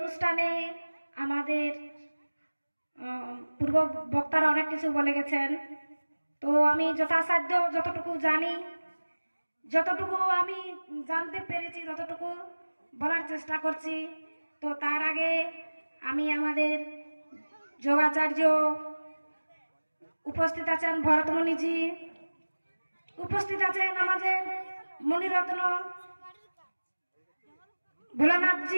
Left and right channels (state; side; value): inverted; both; correlation -1.00